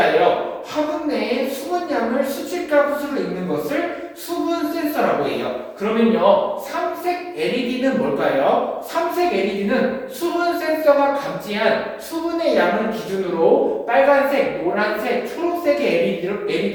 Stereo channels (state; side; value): identical; both; correlation 1.00